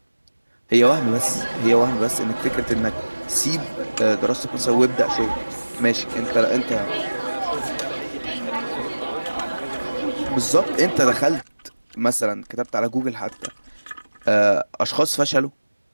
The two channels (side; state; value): both; inverted; correlation -1.00